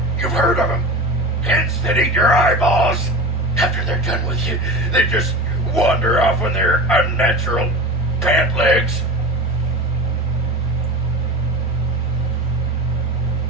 You've heard of them. Hence that eat your eyeballs. After they're done with you, they just wander off on their unnatural pant legs.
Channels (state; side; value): normal; both; correlation 0.31